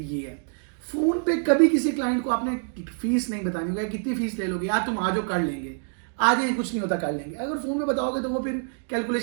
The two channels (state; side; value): silent; left; 61 dB below the other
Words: ये है। फोन पे कभी किसी क्लाइंट को आपने फीस नहीं बतानी होगी, कितनी फीस ले लोगे, यार तुम आ जाओ कर लेंगे, आ जाए कुछ नहीं होता कर लेंगे। अगर फोन में बताओगे तो वो फिर